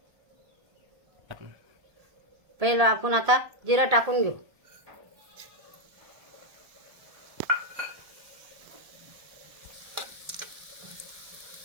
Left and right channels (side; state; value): left; late; 1.8 ms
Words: पहिला आपण आता जिरं टाकून घेऊ।